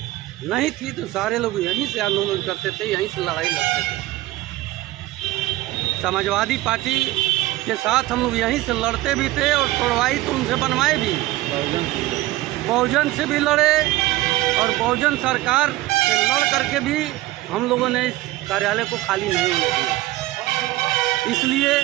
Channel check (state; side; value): quieter; left; 17.3 dB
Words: नहीं थी तो सारे लोग यहीं से आंदोलन करते थे, यहीं से लड़ाई लड़ते थे। समाजवादी पार्टी के साथ हम लोग यहीं से लड़ते भी थे और तोड़वाई तो उनसे बनवाए भी। बहुजन से भी लड़े और बहुजन सरकार से लड़ करके भी हम लोगों ने इस कार्यालय को खाली नहीं होने दिया। इसलिए